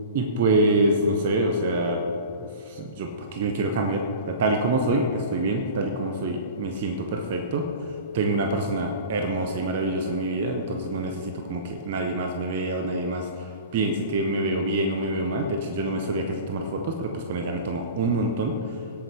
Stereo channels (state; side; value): inverted; both; correlation -0.35